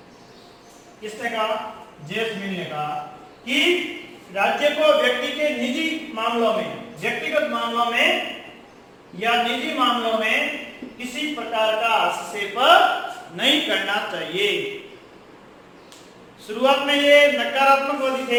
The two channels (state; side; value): identical; both; correlation 1.00